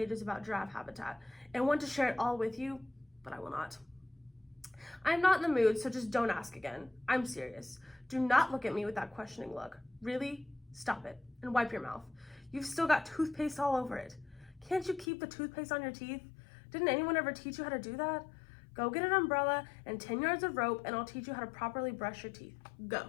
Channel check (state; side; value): drops out; right; at 15.1 s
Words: about giraffe habitat and want to share it all with you, but I will not. I am not in the mood, so just don't ask again. I'm serious. Do not look at me with that questioning look. Really? Stop it and wipe your mouth. You've still got toothpaste all over it. Can't you keep the toothpaste on your teeth? Didn't anyone ever teach you how to do that? Go get an umbrella and 10 yards of rope and I'll teach you how to properly brush your teeth. Go.